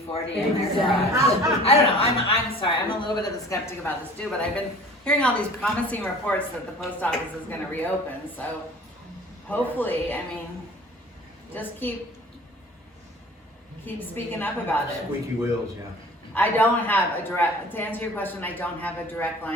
in their Exactly. garage? I don't know, I'm sorry, I'm a little bit of a skeptic about this too, but I've been hearing all these promising reports that the post office is gonna reopen, so hopefully, I mean, just keep speaking up about it. Squeaky wheels, yeah. I don't have a direct, to answer your question, I don't have a direct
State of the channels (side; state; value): both; normal; correlation 0.46